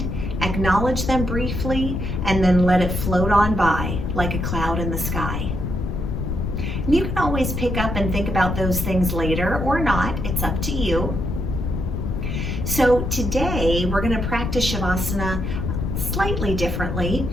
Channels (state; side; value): noise; left; rumble, 2 dB below the sound